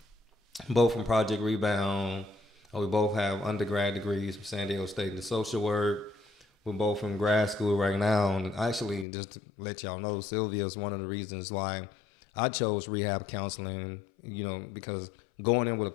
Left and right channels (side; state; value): right; drops out; at 9.1 s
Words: both from Project Rebound. We both have undergrad degrees from San Diego State in social work. We're both in grad school right now, and actually, just to let y'all know, Silvia is one of the reasons why I chose rehab counseling. You know, because going in with a